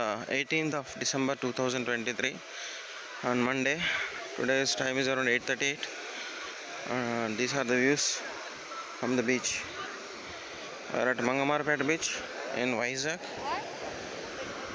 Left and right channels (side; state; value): both; identical; correlation 1.00